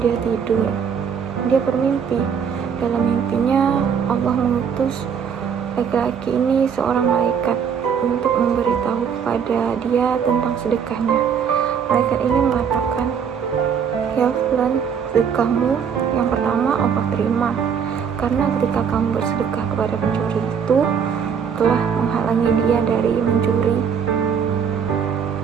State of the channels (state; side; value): quieter; left; 7.1 dB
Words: dia tidur. Dia bermimpi. Dalam mimpinya, Allah mengutus laki-laki ini seorang malaikat untuk memberitahu kepada dia tentang sedekahnya. Malaikat ini mengatakan, "Ya fulan, sedekahmu yang pertama Allah terima, karena ketika kamu bersedekah kepada pencuri itu telah menghalangi dia dari mencuri,